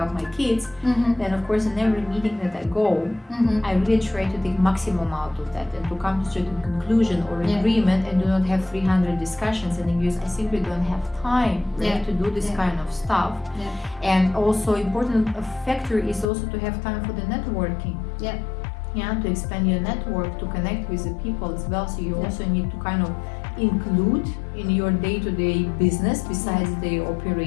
my kids, then of course in every meeting that I go, I really try to take maximum out of that and to come to a certain conclusion or agreement, and do not have 300 discussions, and because I simply don't have time to do this kind of stuff. And also important factor is also to have time for the networking. To expand your network, to connect with the people as well. So you also need to kind of include in your day-to-day business besides the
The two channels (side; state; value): right; drops out; at 16.2 s